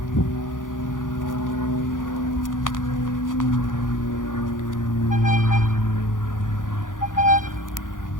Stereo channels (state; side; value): late; right; 0.88 ms